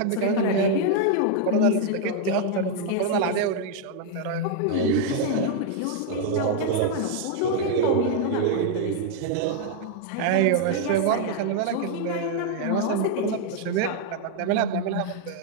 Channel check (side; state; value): both; different; correlation 0.00